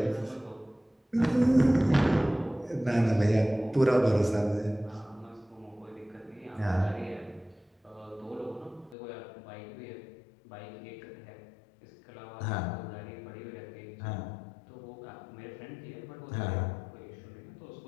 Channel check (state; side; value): drops out; right; at 9.0 s